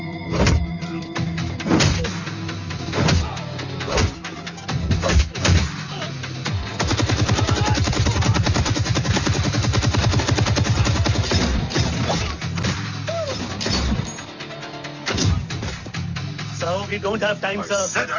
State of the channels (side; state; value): both; identical; correlation 1.00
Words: We don't have time, sir. I said